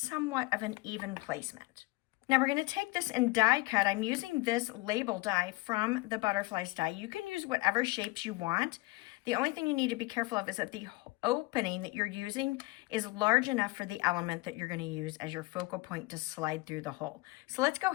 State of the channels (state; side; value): quieter; right; 22.5 dB